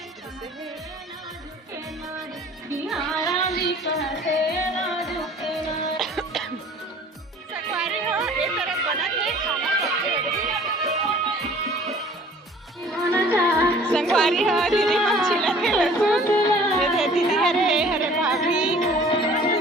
संगवारी हो ए तरफ बना है खाना संगवारी हो दीदी मच्छी लगे लहसुन ये दीदी हरे हरे भाभी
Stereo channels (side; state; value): both; normal; correlation 0.50